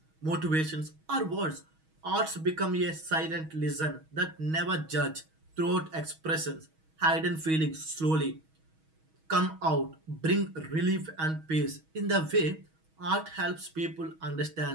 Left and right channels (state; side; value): late; left; 6.3 ms